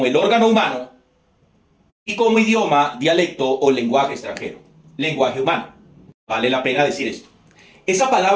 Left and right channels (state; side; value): identical; both; correlation 1.00